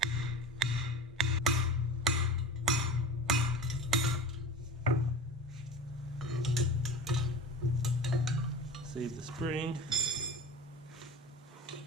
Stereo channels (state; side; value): normal; both; correlation 0.33